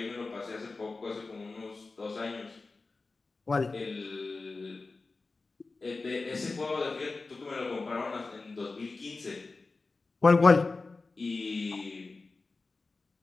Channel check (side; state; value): right; quieter; 3.7 dB